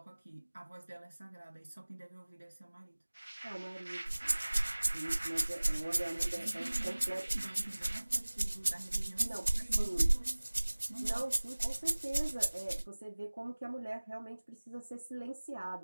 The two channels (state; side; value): inverted; both; correlation -1.00